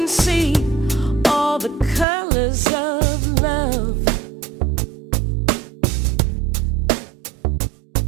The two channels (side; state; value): left; drops out; at 2.1 s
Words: see all the colors of love.